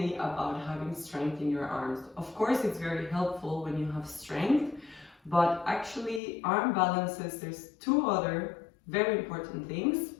about having strength in your arms. Of course, it's very helpful when you have strength, but actually arm balances, there's two other very important things.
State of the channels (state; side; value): drops out; right; at 6.2 s